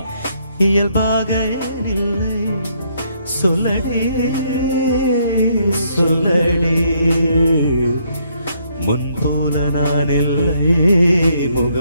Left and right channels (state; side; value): inverted; both; correlation -0.71